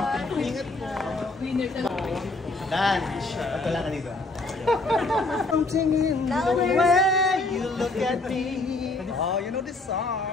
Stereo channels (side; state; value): right; quieter; 3.1 dB